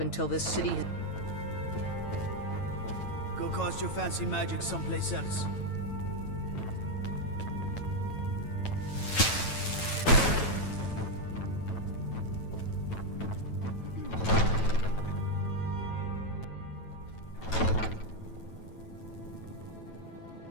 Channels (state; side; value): late; right; 9.1 ms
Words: until this city has... Go cast your fancy magic someplace else.